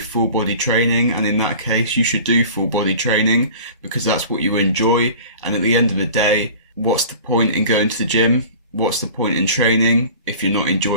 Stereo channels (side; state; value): both; inverted; correlation -0.41